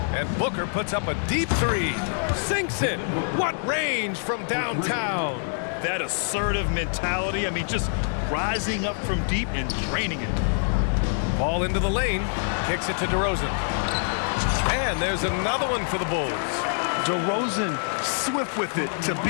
And Booker puts up a deep 3. Sinks it. What range from downtown. That assertive mentality. I mean, just rising up from deep and draining it. Ball into the lane. Kicks it to DeRozan. And there's another one for the Bulls. DeRozan swift with it to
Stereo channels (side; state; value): right; silent; 61 dB below the other